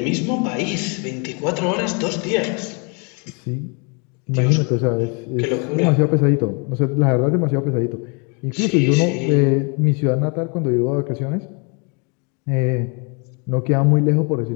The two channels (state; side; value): quieter; right; 34.4 dB